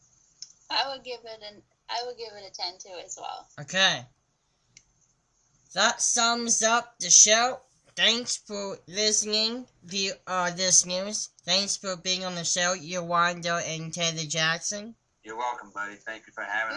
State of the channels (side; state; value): both; identical; correlation 1.00